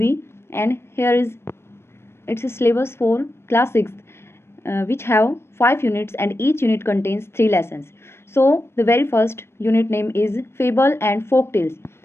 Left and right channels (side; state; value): right; late; 0.12 ms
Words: and here is its syllabus for class 6th which have 5 units and each unit contains 3 lessons. So the very first unit name is Fable and Folk Tales,